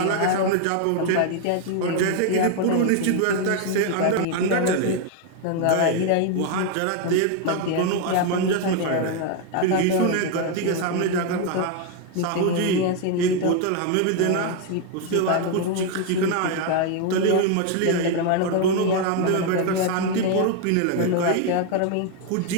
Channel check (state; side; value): different; both; correlation 0.01